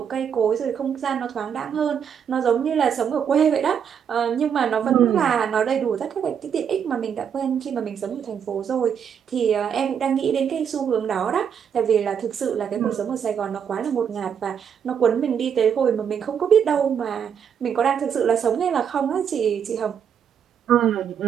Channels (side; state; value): left; quieter; 7.8 dB